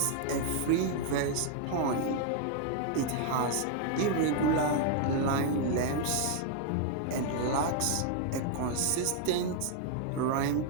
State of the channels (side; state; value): both; different; correlation 0.00